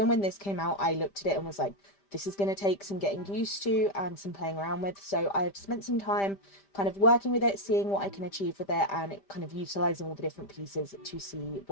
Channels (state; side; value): late; right; 5.1 ms